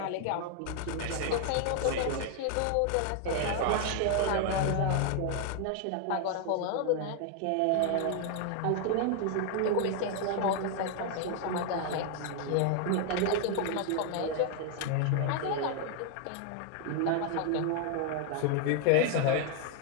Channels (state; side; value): different; both; correlation 0.00